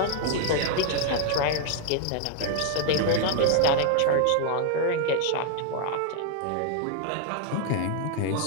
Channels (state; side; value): different; both; correlation 0.00